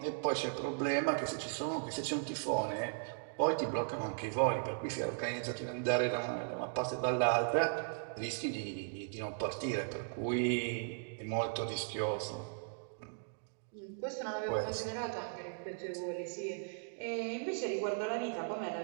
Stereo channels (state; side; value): silent; left; digital silence